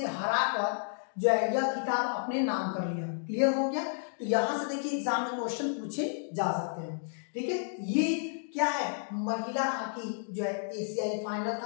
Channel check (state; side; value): silent; right; digital silence